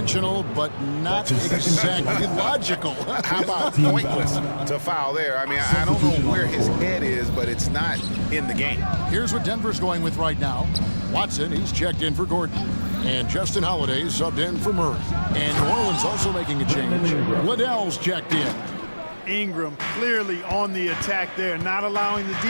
but not exactly logical. How about pointless to foul there? I mean, I don't know where his head is, but it's not in the game. Here's what Denver's going with right now. Watson, he's checked in for Gordon. And Justin Holiday subbed in for Murray. And New Orleans also making a change. Liddell's checked in. Ingram clearly on the attack there, not allowing the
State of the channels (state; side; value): inverted; both; correlation -1.00